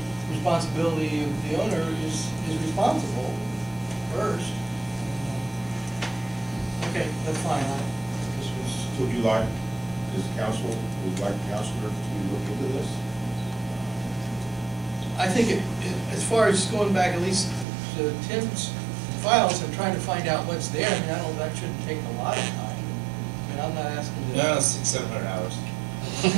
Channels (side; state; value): left; drops out; at 17.7 s